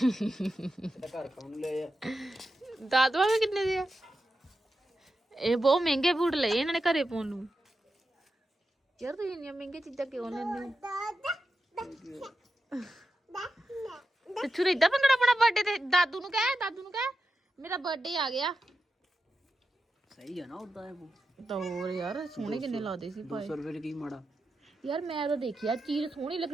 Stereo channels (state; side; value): normal; both; correlation 0.89